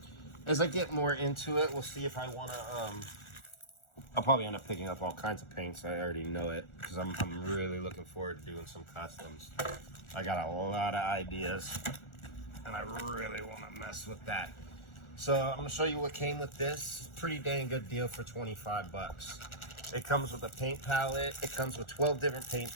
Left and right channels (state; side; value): late; right; 1.4 ms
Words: As I get more into it, we'll see if I want to I'll probably end up picking up all kinds of paints. I already know it, because I'm really looking forward to doing some customs. I got a lot of ideas, and I really want to mess with that. So I'm going to show you what came with this. Pretty dang good deal for $25. It comes with a paint palette. It comes with 12 different paint